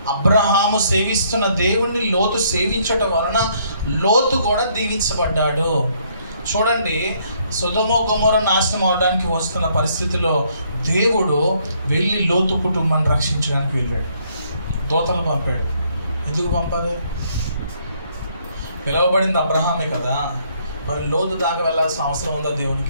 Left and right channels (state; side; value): inverted; both; correlation -0.67